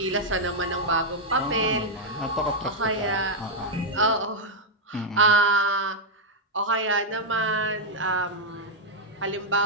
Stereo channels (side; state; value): both; normal; correlation -0.03